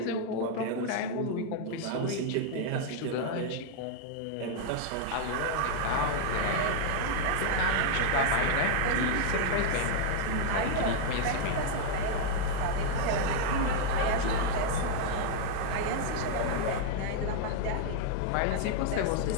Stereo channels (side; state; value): both; different; correlation 0.00